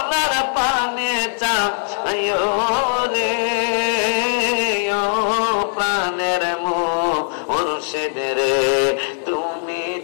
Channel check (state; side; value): silent; right; 60 dB below the other